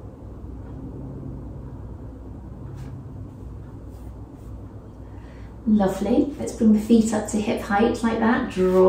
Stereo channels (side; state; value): both; identical; correlation 1.00